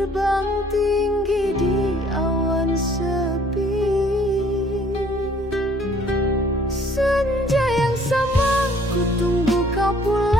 tinggi di awan sepi. Senja yang sama ku tunggu kau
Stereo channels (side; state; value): both; normal; correlation 0.58